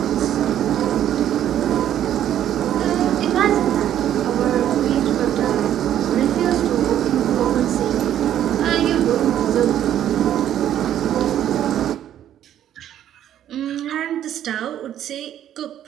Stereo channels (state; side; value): quieter; left; 11.0 dB